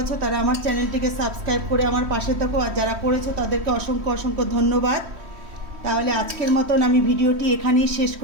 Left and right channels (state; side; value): late; left; 3.1 ms